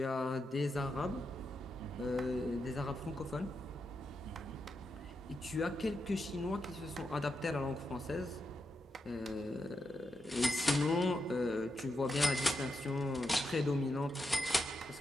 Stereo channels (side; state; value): both; normal; correlation 0.85